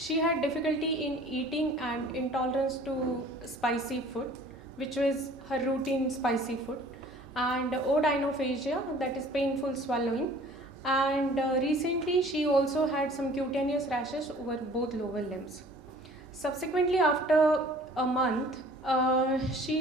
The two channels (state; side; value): normal; both; correlation 0.50